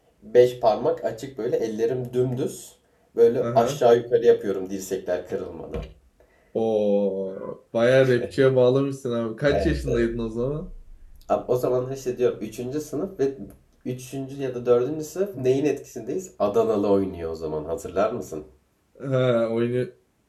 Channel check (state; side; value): identical; both; correlation 1.00